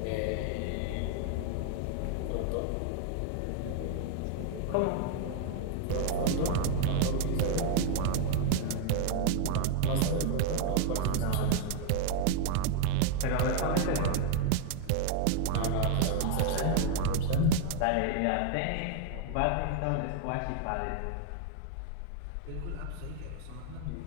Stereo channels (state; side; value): different; both; correlation 0.00